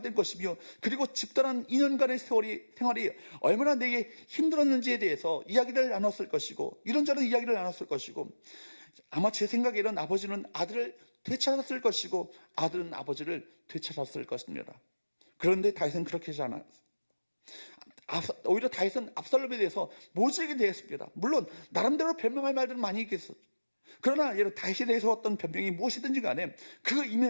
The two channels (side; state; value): both; inverted; correlation -1.00